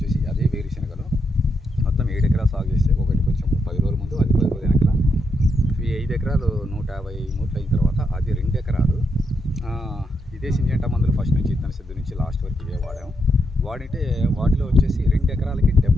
అదే వేరుశనగలో మొత్తం 7 ఎకరాలు సాగు చేస్తే ఒకటి కొంచెం 10 రోజుల ముందు, అది 10 రోజుల వెనకాల. ఈ 5 ఎకరాలు 150 మూట్లు అయిన తర్వాత అది 2 ఎకరాలు ఇదే సింజెంటా మందులు ఫస్ట్ నుంచి ఇత్తన సిద్ధి నుంచి లాస్ట్ వరకు ఇవే వాడాము. వాడితే వాటిలో వచ్చేసి 2 ఎకరాలకి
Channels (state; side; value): normal; both; correlation 0.80